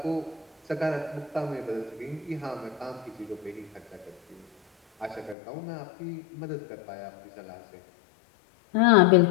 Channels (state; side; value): drops out; right; at 5.4 s